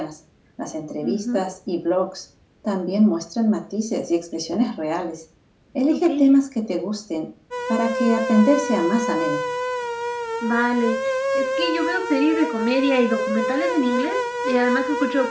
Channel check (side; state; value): both; identical; correlation 1.00